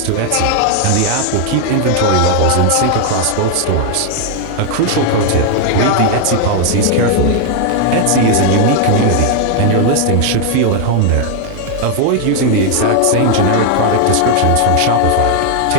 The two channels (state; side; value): different; both; correlation 0.00